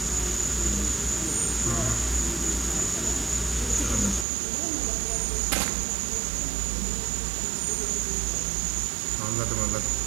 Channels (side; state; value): left; drops out; at 4.2 s